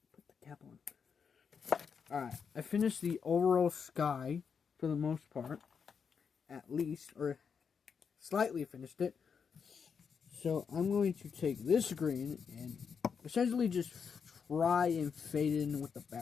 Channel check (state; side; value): quieter; right; 6.4 dB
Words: Put the cap on. Alright, I finished the overall sky for the most part. At least, or slightly finished it. So I'm going to take this green and essentially just try and fade it in with the